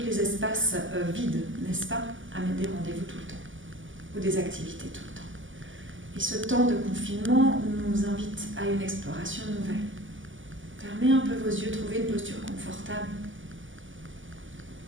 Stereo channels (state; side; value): late; left; 0.57 ms